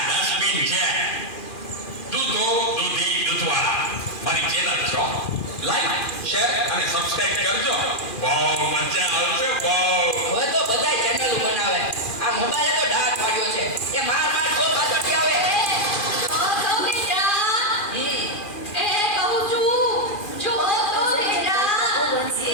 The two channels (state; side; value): late; right; 2.4 ms